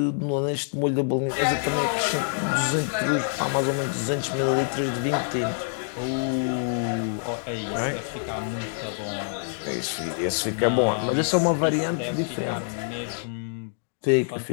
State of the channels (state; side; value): silent; right; digital silence